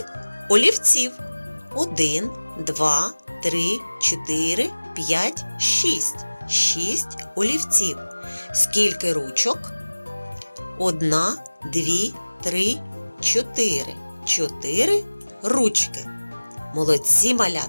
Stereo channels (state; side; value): inverted; both; correlation -1.00